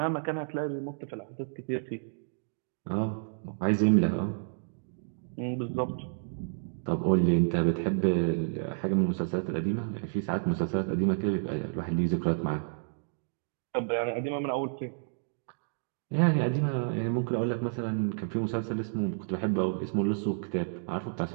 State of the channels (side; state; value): left; silent; digital silence